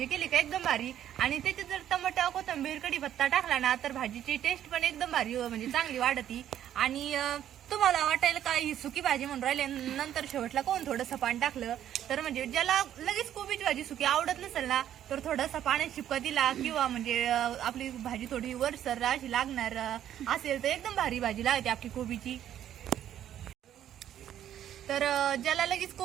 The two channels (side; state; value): left; quieter; 10.9 dB